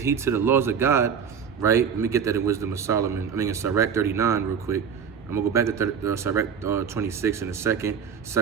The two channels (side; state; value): left; quieter; 7.1 dB